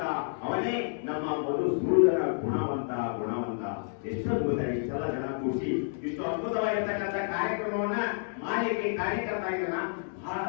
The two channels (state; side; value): silent; right; digital silence